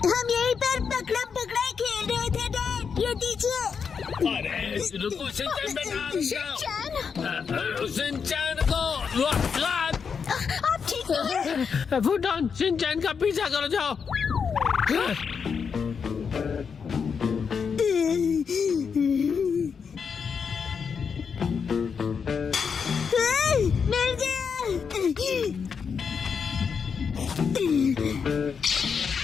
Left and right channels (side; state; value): right; quieter; 6.2 dB